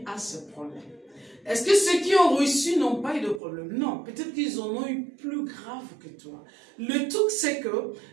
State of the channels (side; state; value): left; drops out; at 3.4 s